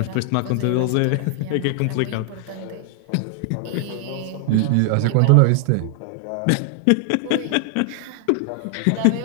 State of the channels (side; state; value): both; different; correlation 0.00